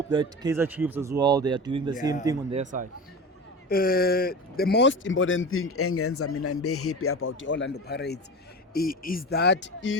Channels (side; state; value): both; normal; correlation 0.29